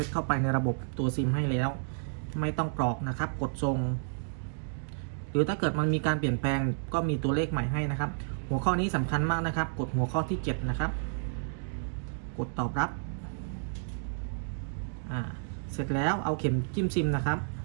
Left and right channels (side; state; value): left; silent; digital silence